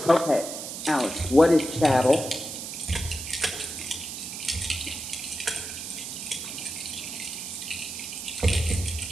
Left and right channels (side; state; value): right; noise; hiss, 7 dB below the sound